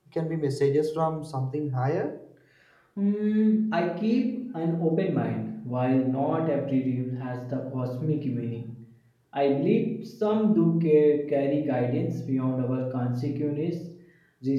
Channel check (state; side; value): identical; both; correlation 1.00